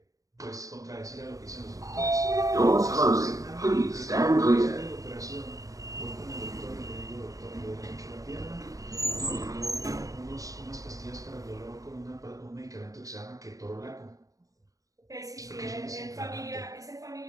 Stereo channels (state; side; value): late; left; 0.16 ms